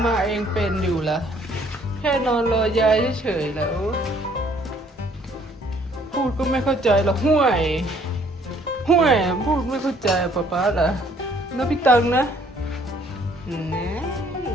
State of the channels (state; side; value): normal; both; correlation 0.62